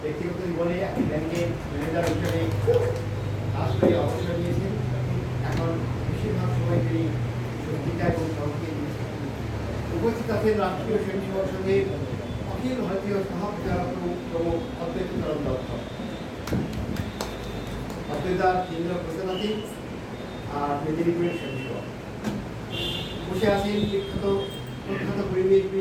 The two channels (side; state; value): both; identical; correlation 1.00